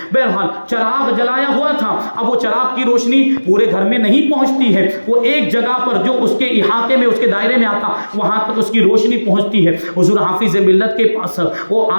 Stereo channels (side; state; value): both; inverted; correlation -1.00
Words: بہرحال چراغ جلایا ہوا تھا۔ اب وہ چراغ کی روشنی پورے گھر میں نہیں پہنچتی ہے، وہ ایک جگہ پر جو اس کے احاطے میں، اس کے دائرے میں آتا، وہاں تک اس کی روشنی پہنچتی ہے۔ حضور حافظ ملت کے پاس وہ